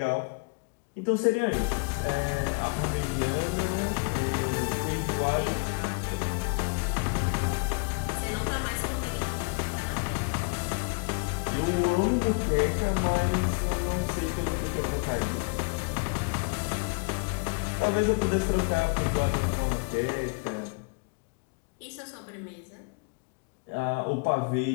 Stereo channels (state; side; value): quieter; right; 35.0 dB